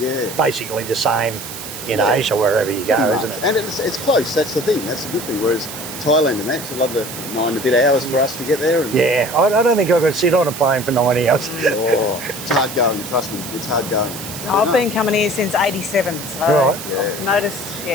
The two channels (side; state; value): right; noise; hiss, 10 dB below the sound